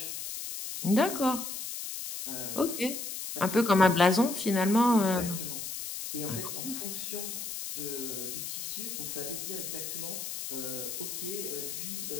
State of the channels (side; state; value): left; noise; hiss, 6 dB below the sound